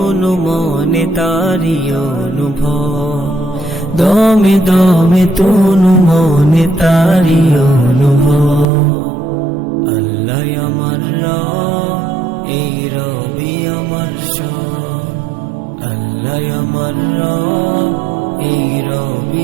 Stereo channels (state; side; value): drops out; left; at 8.7 s